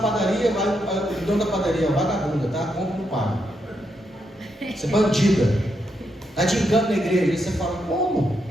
vai o dono da padaria, vagabunda, tá? Compra e não paga. Você é bandida, está de engano na igreja. Aí você fala, como?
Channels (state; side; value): normal; both; correlation 0.81